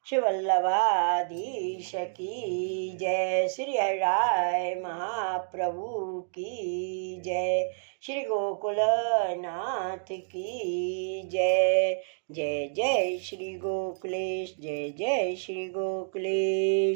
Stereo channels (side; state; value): left; silent; digital silence